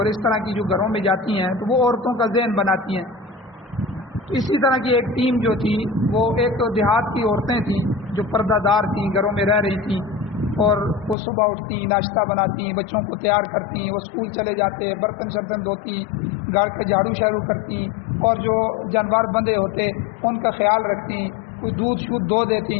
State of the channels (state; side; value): drops out; right; at 11.2 s